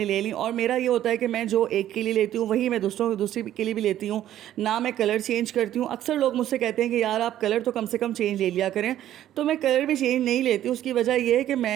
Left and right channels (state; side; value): quieter; left; 12.2 dB